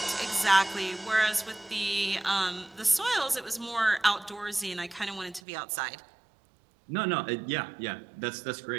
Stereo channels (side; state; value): left; drops out; at 5.4 s